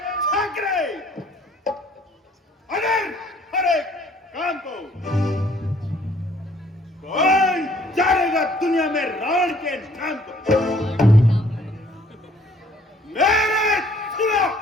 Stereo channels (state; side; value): normal; both; correlation 0.60